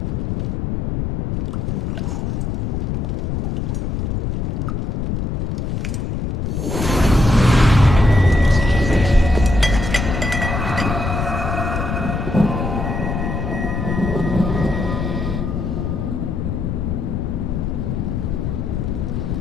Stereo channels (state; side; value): noise; left; rumble, 1 dB below the sound